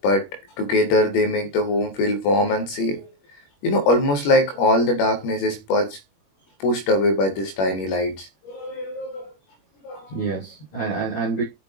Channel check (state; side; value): late; right; 21 ms